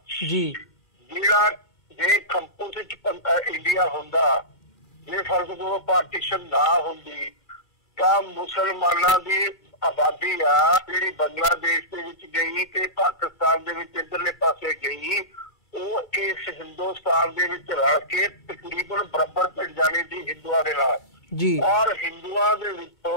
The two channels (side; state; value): both; normal; correlation -0.20